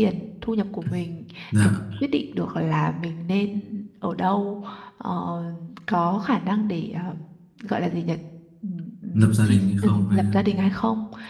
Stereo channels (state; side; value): identical; both; correlation 1.00